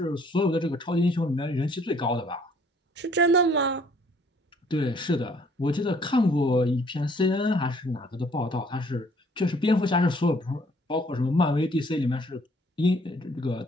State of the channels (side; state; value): both; normal; correlation 0.60